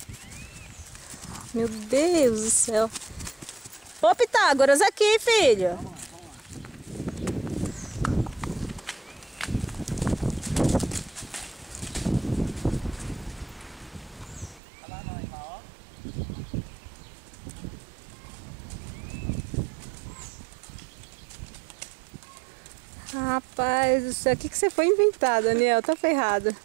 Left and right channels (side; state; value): left; drops out; at 14.6 s